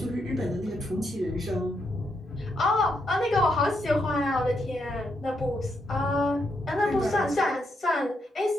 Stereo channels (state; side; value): normal; both; correlation 0.79